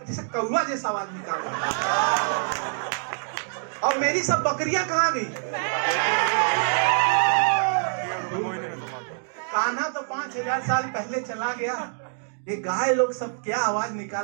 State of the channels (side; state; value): left; silent; 61 dB below the other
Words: जैसे कौवा जैसा आवाज निकाल रही है। और मेरी सब बकरियां कहाँ गई? कान्हा तो 5000 साल पहले चला गया। ये गाय लोग सब क्या आवाज